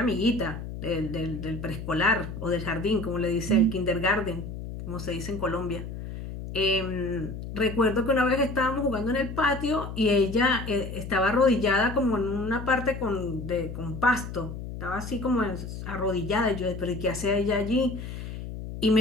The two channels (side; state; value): left; noise; hum, 8 dB below the sound